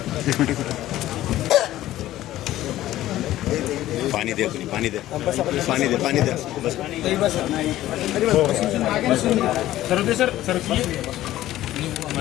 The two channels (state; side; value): quieter; right; 14.5 dB